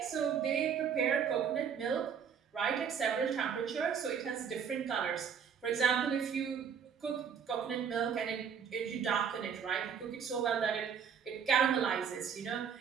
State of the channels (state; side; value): quieter; left; 7.2 dB